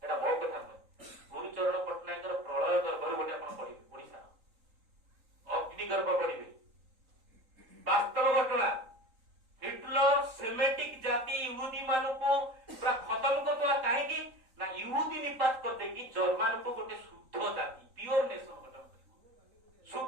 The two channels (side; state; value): left; late; 3.8 ms